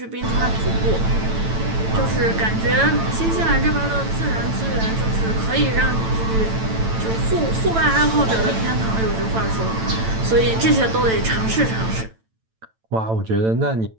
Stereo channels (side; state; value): left; late; 9.0 ms